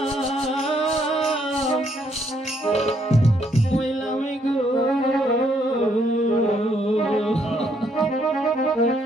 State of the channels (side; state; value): both; normal; correlation 0.71